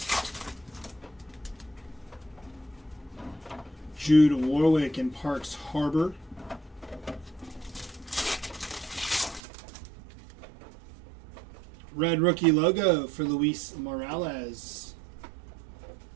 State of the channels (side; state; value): left; drops out; at 9.4 s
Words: Jude Warwick in Parks Harbor. Red rookie logo for Luis Morales.